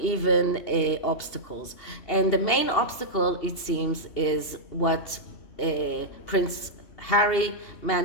obstacles. And the main obstacle, it seems, is what Prince Harry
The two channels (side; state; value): right; late; 2.8 ms